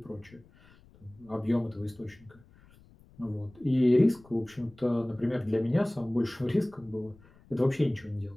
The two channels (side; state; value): left; noise; rumble, 26 dB below the sound